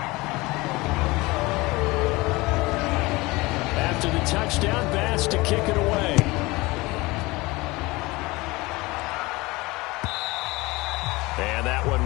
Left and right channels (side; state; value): right; quieter; 22.3 dB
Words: After the touchdown, Bass to kick it away. And that one